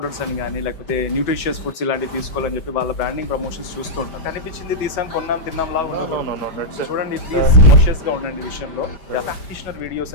అని కానీ లేకపోతే న్యూట్రిషియస్ ఫుడ్స్ ఇలాంటివి తీసుకోవాలని చెప్పి వాళ్ళ బ్రాండింగ్ ప్రమోషన్స్ చూస్తూ ఉంటాం. కనిపించింది తీసాం, కొన్నాం, తిన్నాం లాగా చూడండి. ప్లీజ్ కాన్షియస్ గా ఉండండి విషయంలో. ప్రాక్టీషనర్ వీడియోస్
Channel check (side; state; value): right; late; 5.1 ms